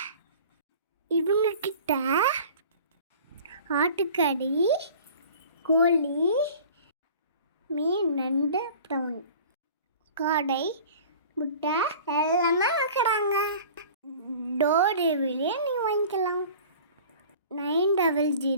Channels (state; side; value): inverted; both; correlation -0.44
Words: இவங்க கிட்ட ஆட்டுக்கறி, கோழி, மீன், நண்டு, ப்ரௌன், காடை, முட்டை எல்லாமே விற்கிறாங்க. டோர் டெலிவரியே நீங்கள் வாங்கிக்கலாம்.